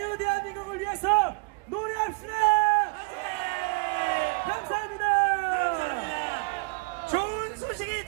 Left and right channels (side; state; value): left; quieter; 30.5 dB